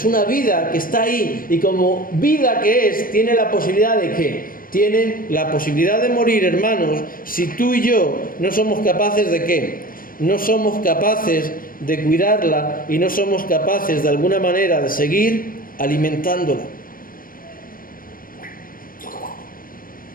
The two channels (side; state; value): right; late; 0.41 ms